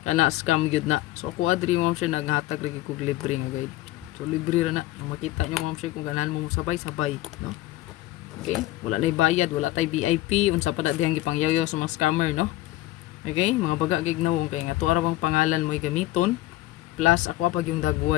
Kana scam gyud na. So ako adri ma'am sir naghatag lagi kog libre nga guide. So libre ra na. Makita nyo ma'am sir kung ganahan mo sabay-sabay no. Okay? Wala nay bayad, wala tay VIP, unsa pa dihang gipangyayo sa mga scammer no. Okay? Mga baga gignawong kay nga tuwa ra bang pangalan mo gamiton plus ako pag yung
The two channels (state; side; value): quieter; right; 16.8 dB